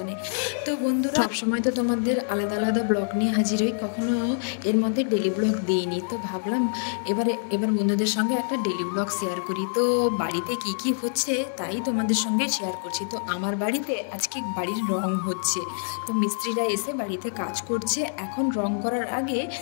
তো বন্ধুরা, সবসময় তো তোমাদের আলাদা আলাদা ব্লগ নিয়ে হাজির হই, কখনো এর মধ্যে ডেলি ব্লগ দিইনি। তো ভাবলাম এবার বন্ধুদের সঙ্গে একটা ডেলি ব্লগ শেয়ার করি। তো বাড়িতে কি কি হচ্ছে তাই তোমাদের সঙ্গে শেয়ার করছি। তো আমার বাড়িতে আজকে বাড়ির রং হচ্ছে। তো মিস্ত্রিরা এসে বাড়িতে কাজ করছে। এখন রং করার আগে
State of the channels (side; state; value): right; silent; 61 dB below the other